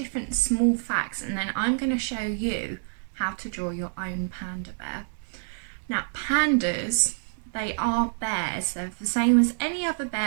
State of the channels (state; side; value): silent; left; digital silence